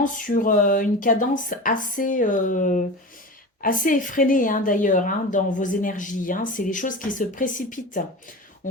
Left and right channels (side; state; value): both; normal; correlation 0.30